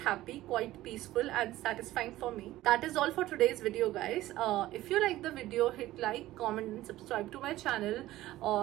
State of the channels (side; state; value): left; quieter; 15.8 dB